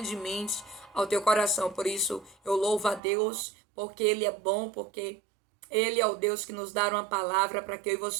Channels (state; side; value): drops out; left; at 3.0 s